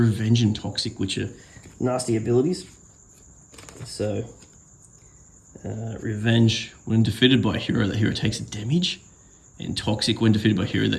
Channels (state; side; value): identical; both; correlation 1.00